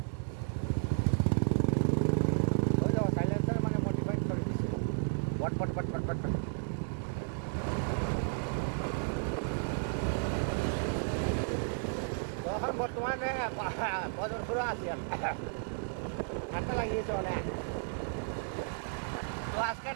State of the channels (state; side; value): silent; left; digital silence